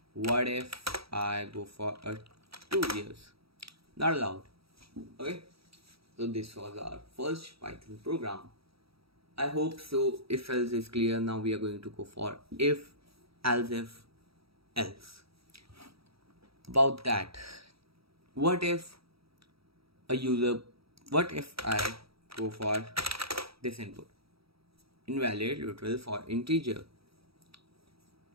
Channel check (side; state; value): left; late; 0.76 ms